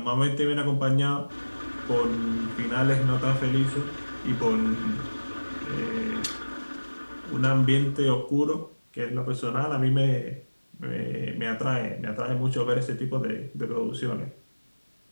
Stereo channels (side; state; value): both; inverted; correlation -1.00